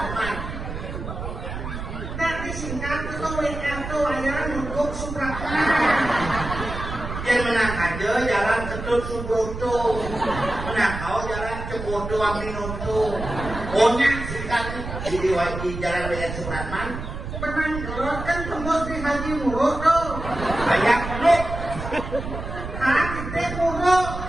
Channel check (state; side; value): noise; right; rumble, 7 dB below the sound